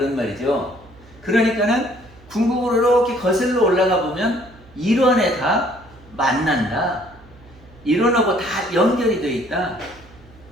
말이죠. 그러니까는 궁극으로 이렇게 거슬러 올라가 보면 일원에 다 만난다. 일원하고 다 연결이 되어 있다.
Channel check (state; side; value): noise; right; hum, 24 dB below the sound